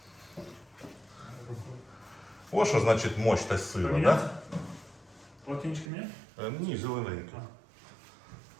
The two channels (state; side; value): drops out; left; at 5.9 s